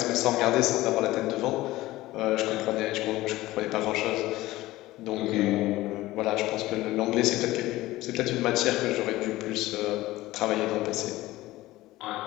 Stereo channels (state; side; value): quieter; right; 17.5 dB